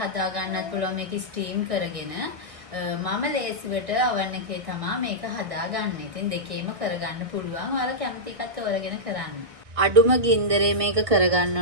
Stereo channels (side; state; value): left; late; 1.6 ms